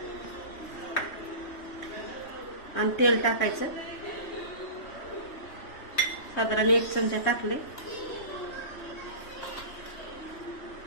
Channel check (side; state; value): right; late; 3.2 ms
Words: आणि तेल टाकायचं. साधारण 1 चमचा टाकले.